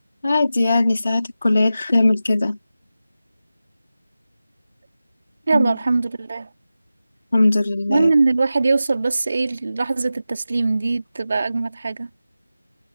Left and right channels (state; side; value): inverted; both; correlation -0.93